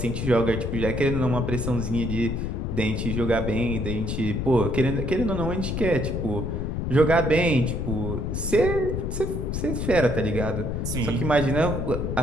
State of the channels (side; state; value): left; noise; rumble, 2 dB below the sound